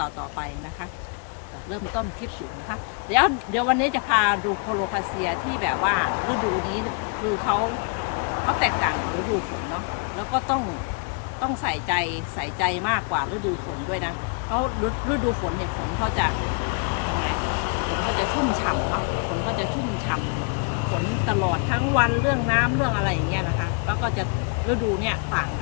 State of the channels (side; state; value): right; quieter; 39.5 dB